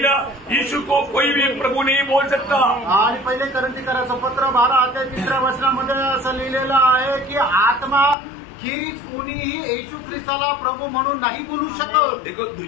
यीशु को कोई भी प्रभु नहीं बोल सकता. आणि पहिले कोरिन्थीकराचं पत्र 12:3 वचनामध्ये असं लिहिलेलं आहे की आत्मा खेरीज कोणीही येशू ख्रिस्ताला प्रभू म्हणून नाही बोलू शकत. देखो,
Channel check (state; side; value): drops out; right; at 8.2 s